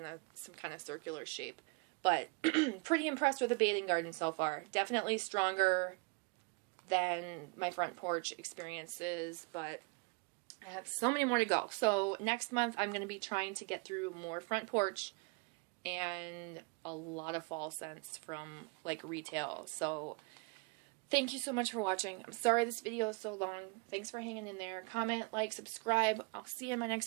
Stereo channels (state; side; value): quieter; left; 31.0 dB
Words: some kind of circular shape. But pretty impressed with the Bathing Garden so far. Definitely stronger than my Front Porch experiences, but I have so many more to go. So next month I'm going to be trying to get through more Front Porch and a lot of fall scents from like retail. So thank you so much for watching. I'm sorry this video is so long. Thanks for hanging in there. Comment, like, subscribe. I'll see you in my next